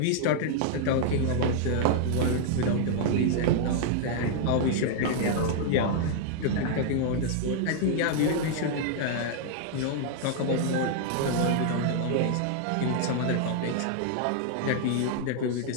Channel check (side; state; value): both; different; correlation -0.01